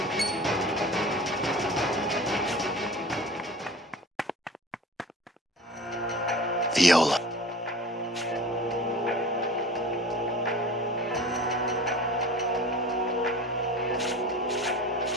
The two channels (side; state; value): both; normal; correlation 0.39